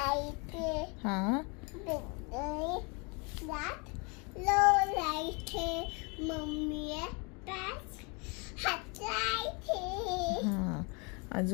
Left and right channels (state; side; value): quieter; right; 31.7 dB